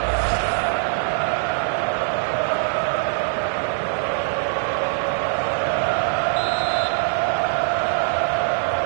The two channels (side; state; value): left; silent; digital silence